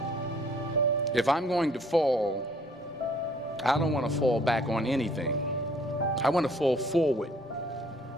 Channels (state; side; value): normal; both; correlation 0.59